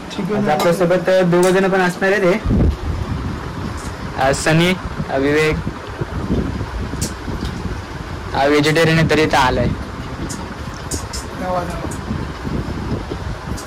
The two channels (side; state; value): both; identical; correlation 1.00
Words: चिकन आपल्यासोबत दोघं जण पण असणार आहे. ते सनी, विवेक हा व्हेजिटेरियन आहे तरी इथं आलाय.